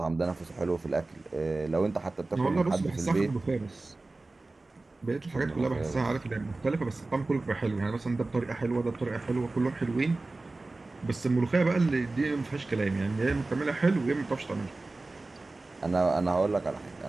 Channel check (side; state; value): left; quieter; 3.2 dB